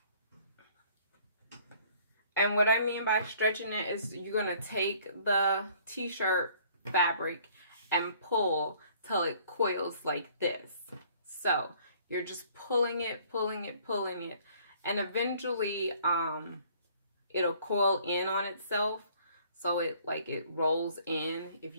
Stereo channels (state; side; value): inverted; both; correlation -0.58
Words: And what I mean by stretching it is you're going to take the t-shirt fabric and pull till it coils like this. So you're just pulling it, pulling it, pulling it, and eventually it'll coil in on itself. So it rolls in. If